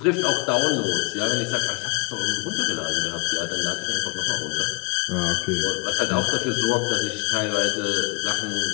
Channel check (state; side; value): quieter; right; 31.4 dB